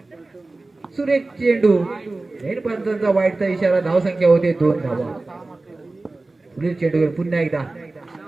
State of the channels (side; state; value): left; quieter; 3.2 dB